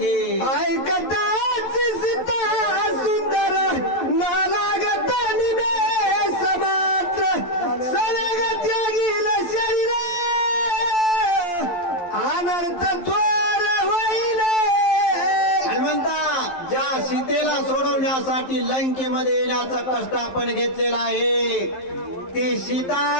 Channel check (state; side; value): late; right; 11 ms